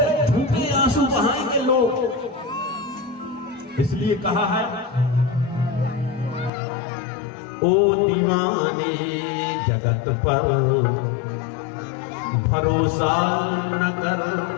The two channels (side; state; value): right; drops out; at 6.5 s